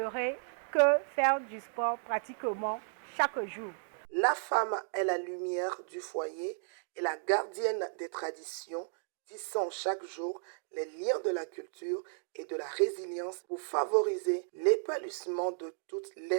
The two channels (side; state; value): left; silent; digital silence